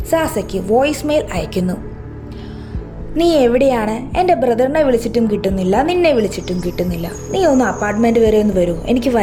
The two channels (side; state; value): both; identical; correlation 1.00